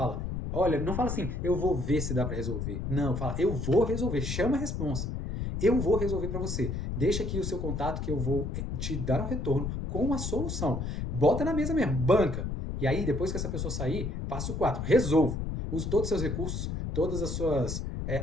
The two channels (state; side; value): noise; left; rumble, 3 dB below the sound